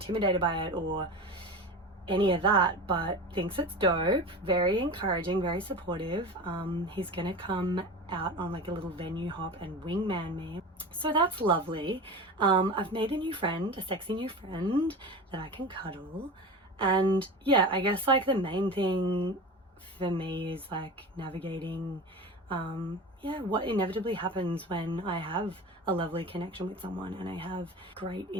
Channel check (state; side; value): normal; both; correlation 0.30